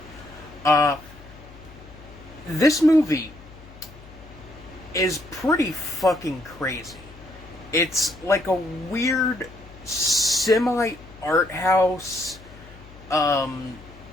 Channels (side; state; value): left; noise; hum, 20 dB below the sound